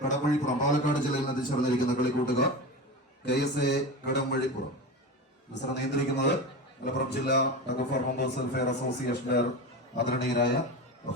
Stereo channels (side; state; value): both; normal; correlation 0.25